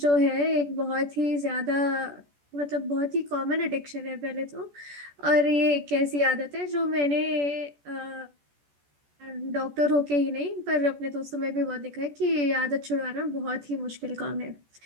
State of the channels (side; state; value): left; late; 14 ms